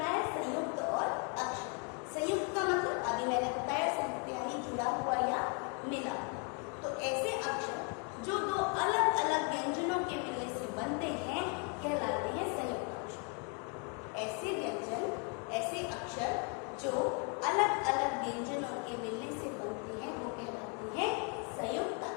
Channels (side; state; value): right; quieter; 36.5 dB